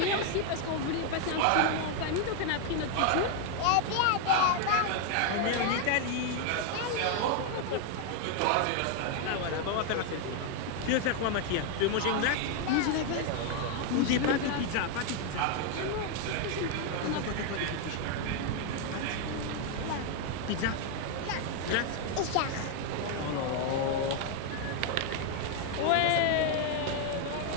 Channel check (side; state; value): both; different; correlation 0.01